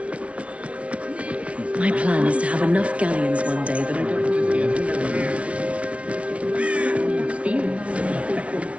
My plan is to have enough galleons one day that I don't...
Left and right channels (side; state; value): left; late; 0.063 ms